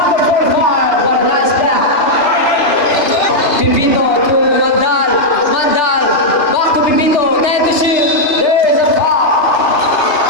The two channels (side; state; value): right; late; 2.8 ms